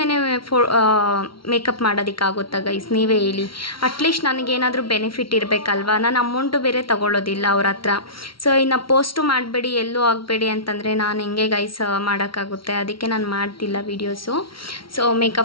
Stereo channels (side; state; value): right; late; 0.74 ms